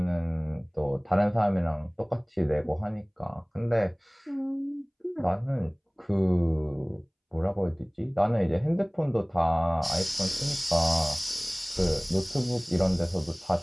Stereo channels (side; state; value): both; identical; correlation 1.00